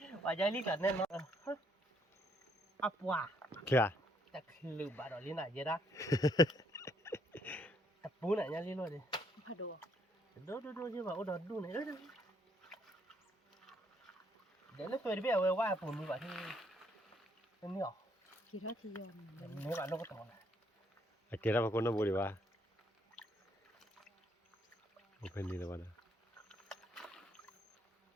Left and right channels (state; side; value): normal; both; correlation 0.69